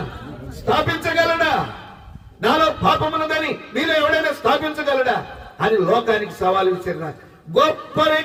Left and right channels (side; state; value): both; identical; correlation 1.00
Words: స్థాపించగలడా? నాలో పాపమున్నదని మీలో ఎవడైనా స్థాపించగలడా అని లోకానికి సవాలు విసిరిన గొప్ప